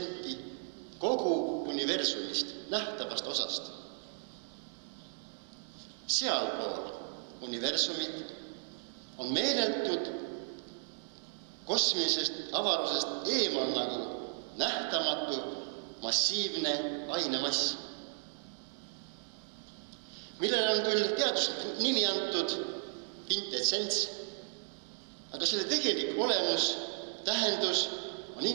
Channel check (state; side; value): silent; left; digital silence